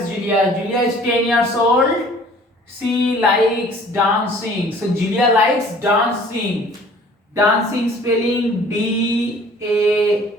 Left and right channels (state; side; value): normal; both; correlation 0.52